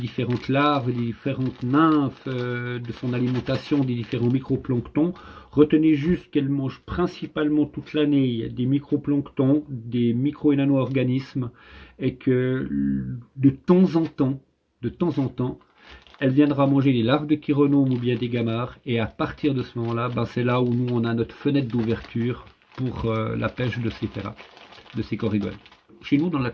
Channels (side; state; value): both; identical; correlation 1.00